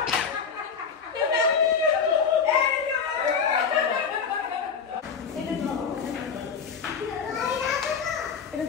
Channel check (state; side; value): quieter; right; 6.2 dB